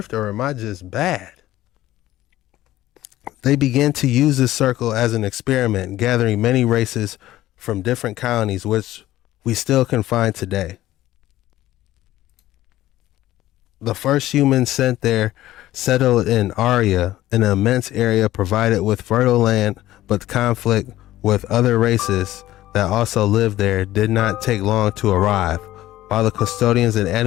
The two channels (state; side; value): quieter; right; 15.1 dB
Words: or am I just bad? They began to use this circle as an experiment, gathering many races from different colonies, which we still can find today. The first humans sent there settled in Aria, an immense area provided with fertile land, but conflict with other races that also lived there did not take long to arrive. While the custodians and